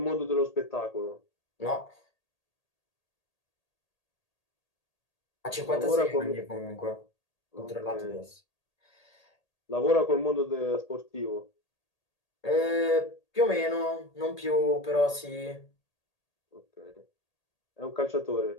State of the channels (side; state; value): right; late; 1.8 ms